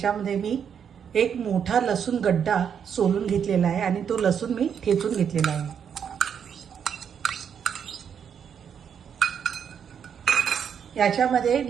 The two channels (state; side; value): quieter; left; 7.8 dB